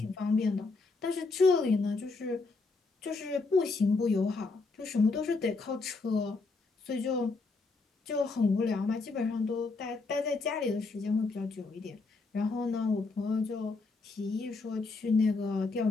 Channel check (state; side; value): quieter; right; 3.8 dB